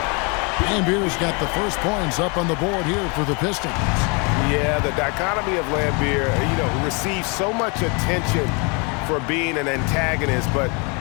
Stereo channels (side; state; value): right; quieter; 32.0 dB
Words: Lambert's got the first points up on the board here for the Pistons. Yeah, the dichotomy of Lambert, receives so much attention for being an antagonist, but